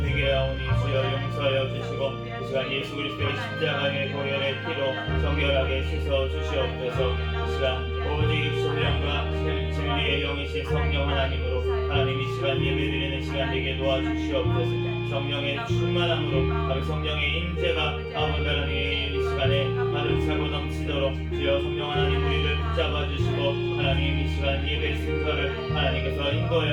주여 용서하여 주시고 이 시간 예수 그리스도의 십자가의 보혈의 피로 정결하게 씻어 주시옵소서. 이 시간 오직 신령과 진리의 영이신 성령 하나님으로 하나님 이 시간 예배드리는 시간 되게 도와주시옵소서. 성령의 충만함으로 성령의 임재가 아버지 하나님 이 시간에 가득 차고 넘치도록 주여 성령 하나님 우리를 붙잡아 주시고 하나님 이 시간 예배 순서를 하나님께서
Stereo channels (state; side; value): identical; both; correlation 1.00